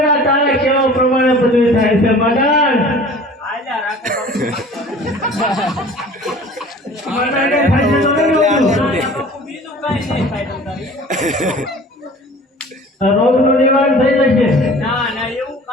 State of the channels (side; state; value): both; normal; correlation 0.45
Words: તારે કેવા પ્રમાણે બધું થાય છે મંડાળ આલ્યા રાખો મંડાળે થાય છે તો નહીં હોતું. બાપુ બીજું કાંઈ નહીં થાય તમારે રોગનું નિવારણ થઈ જશે. ના એવું